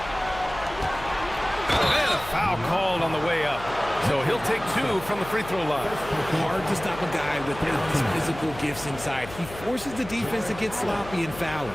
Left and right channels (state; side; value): noise; left; hum, 14 dB below the sound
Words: And a foul called on the way up. So he'll take 2 from the free throw line. Hard to stop a guy without his physical gifts inside. He forces the defense to get sloppy and foul.